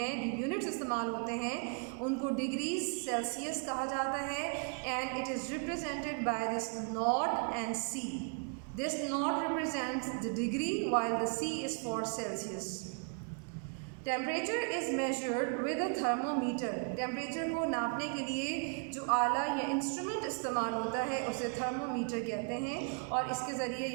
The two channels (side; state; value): left; quieter; 38.7 dB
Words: जो यूनिट्स इस्तेमाल होते हैं, उनको डिग्रीज सेल्सियस कहा जाता है. And it is represented by this nought and C. This nought represents the degree while the C is for Celsius. Temperature is measured with a thermometer. Temperature को नापने के लिए जो आला या इंस्ट्रूमेंट इस्तेमाल होता है उसे थर्मोमीटर कहते हैं, और इसके ज़रिए